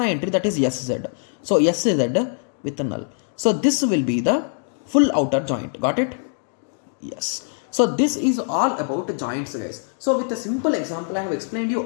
entry, that is sz. So sz with a null. So this will be the full outer joint. Got it? Yes. So this is all about joints, guys. So with a simple example, I have explained you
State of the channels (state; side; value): silent; right; 64 dB below the other